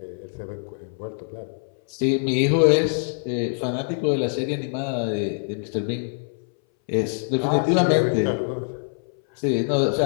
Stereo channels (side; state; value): right; silent; 60 dB below the other